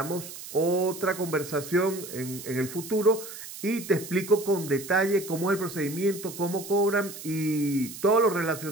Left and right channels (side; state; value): right; noise; hiss, 12 dB below the sound